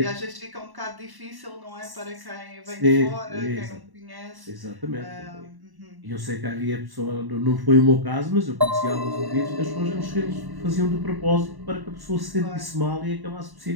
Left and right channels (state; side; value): late; left; 1.1 ms